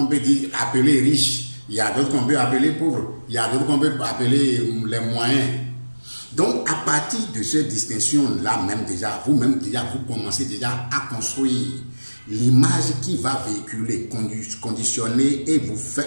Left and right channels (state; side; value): inverted; both; correlation -1.00